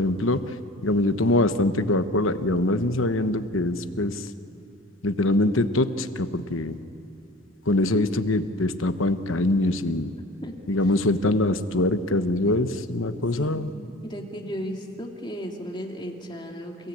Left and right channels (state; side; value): normal; both; correlation 0.41